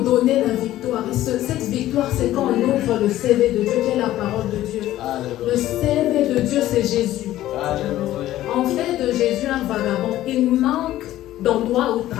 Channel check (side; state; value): right; quieter; 14.2 dB